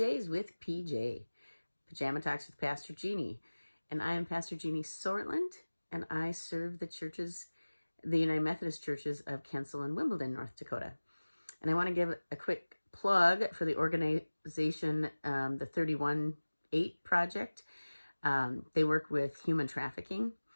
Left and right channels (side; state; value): both; inverted; correlation -1.00